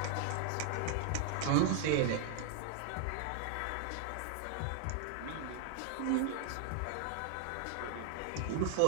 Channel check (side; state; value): both; different; correlation 0.00